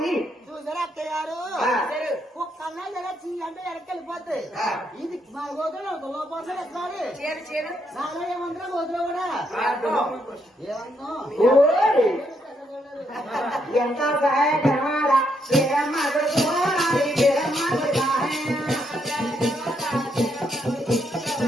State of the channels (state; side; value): normal; both; correlation 0.76